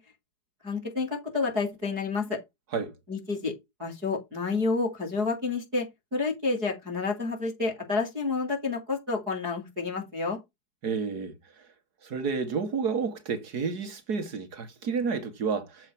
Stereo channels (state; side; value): late; left; 4.7 ms